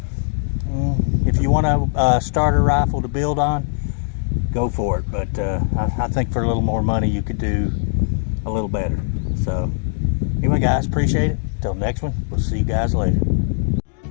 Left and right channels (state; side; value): silent; right; digital silence